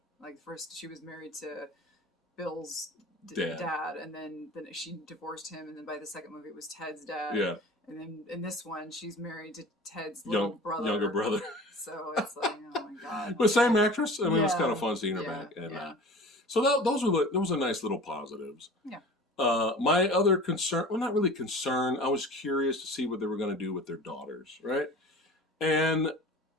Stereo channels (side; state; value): both; normal; correlation 0.40